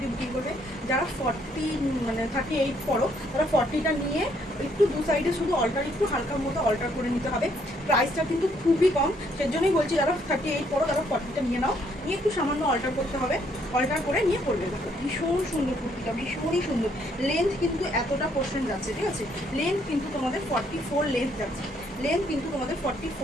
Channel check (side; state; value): both; normal; correlation 0.69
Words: বুকিং করবে। যারা 38 পড়ো তারা 40টা নিয়ে একটু দু সাইডে শুধু অল্টার, একটু হালকার মতো অল্টার করে নিতে হবে। প্রাইসটা কিন্তু খুবই কম, সেজন্যই বলছি যারা 38 পড়ো তারা 40টা নিয়ে নাও, নিয়ে একটু সামান্য অল্টার করতে হবে, অল্টার করে নিয়ে পড়বে। দেখো ভীষণ সুন্দর কুর্তিটা, ভীষণই সুন্দর। লেন্থ কিন্তু এতটা পোর্শন যাচ্ছে, ঠিক আছে? লেন্থ কিন্তু তোমাদের 44 লেন্থ যাচ্ছে,